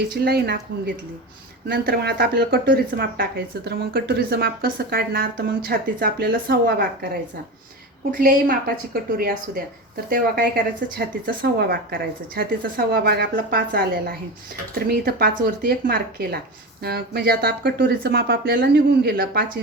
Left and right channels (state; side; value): normal; both; correlation 0.25